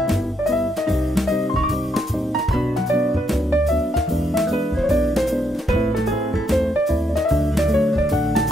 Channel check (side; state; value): both; normal; correlation 0.76